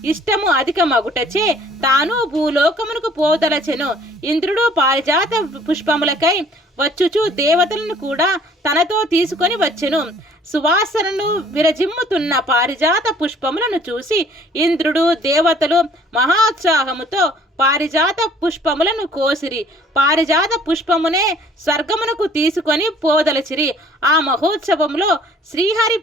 ఇష్టము అధికమగుటచే తాను భూలోకమునకు పోదలచెను. ఇంద్రుడు పారిజాత పుష్పములకై వచ్చుచు దేవతలను కూడా తనతో తీసుకొని వచ్చెను. సువాసనను విరజిమ్ముతున్న పారిజాత పుష్పములను చూసి ఇంద్రుడు, దేవతలు మహోత్సాహముతో పారిజాత పుష్పములను కోసిరి. పారిజాత పుష్పమునే స్వర్గమునకు తీసుకొని పోదలచిరి. ఆ మహోత్సవంలో శ్రీహరి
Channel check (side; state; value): both; normal; correlation 0.56